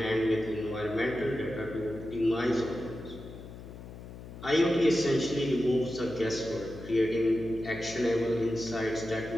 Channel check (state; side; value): noise; left; hum, 14 dB below the sound